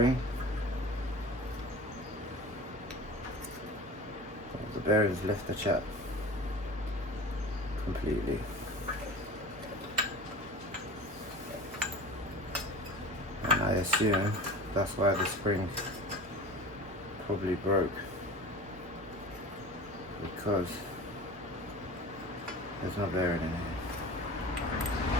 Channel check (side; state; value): both; normal; correlation 0.36